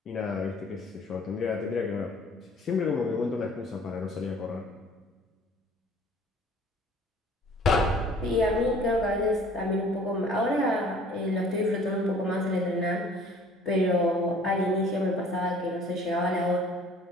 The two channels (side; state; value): both; normal; correlation 0.52